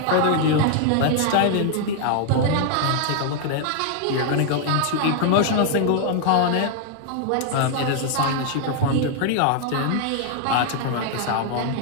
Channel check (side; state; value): both; different; correlation 0.00